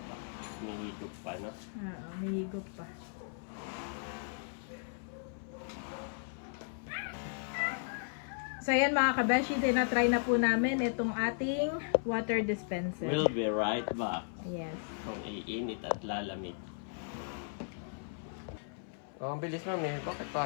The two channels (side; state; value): right; silent; 54 dB below the other